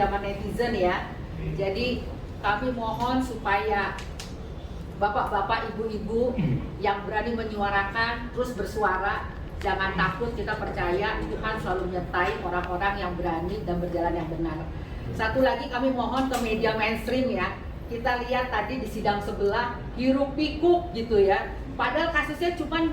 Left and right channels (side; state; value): both; identical; correlation 1.00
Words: netizen ya. Jadi kami mohon supaya bapak-bapak, ibu-ibu yang berani menyuarakan, terus bersuara, jangan takut. Kita percaya Tuhan selalu menyertai orang-orang yang berani dan berjalan yang benar. Satu lagi kami mohon ke media mainstream ya. Kita lihat tadi di sidang sebelah hiruk pikuk gitu ya. Padahal kasusnya cuma